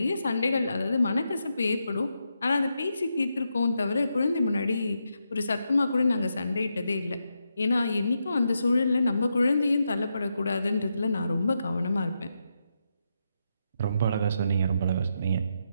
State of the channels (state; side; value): inverted; both; correlation -0.84